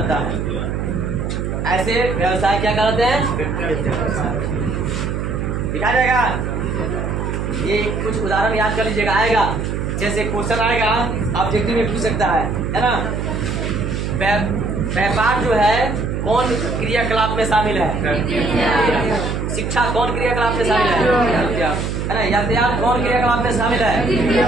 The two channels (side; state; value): right; noise; hum, 2 dB below the sound